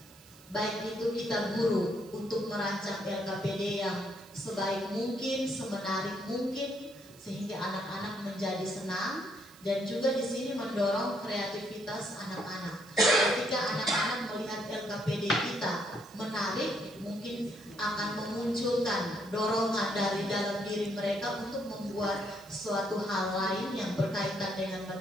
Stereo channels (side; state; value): right; noise; hiss, 23 dB below the sound